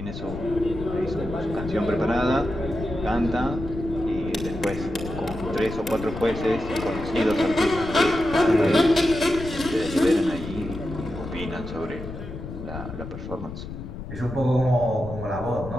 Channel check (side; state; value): left; noise; rumble, 9 dB below the sound